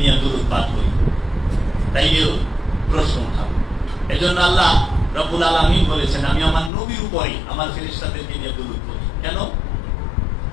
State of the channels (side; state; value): right; drops out; at 6.7 s